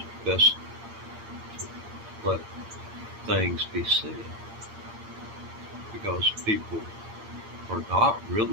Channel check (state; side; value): late; left; 9.7 ms